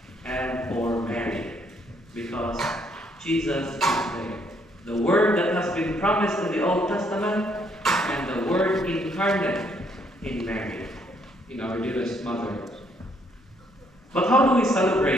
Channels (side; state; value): both; normal; correlation 0.69